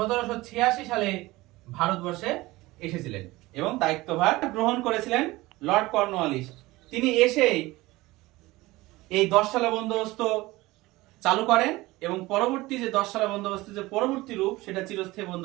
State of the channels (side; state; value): left; quieter; 19.8 dB